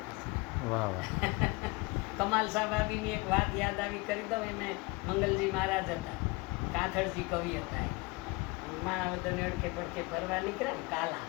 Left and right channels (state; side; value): quieter; right; 25.9 dB